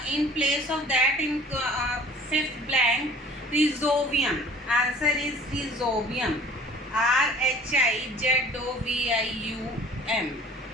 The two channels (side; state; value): both; normal; correlation 0.49